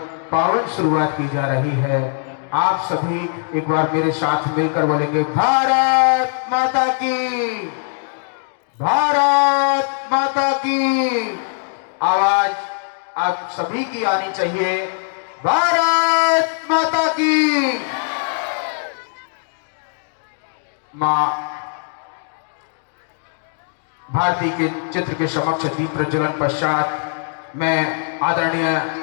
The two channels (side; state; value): right; silent; 59 dB below the other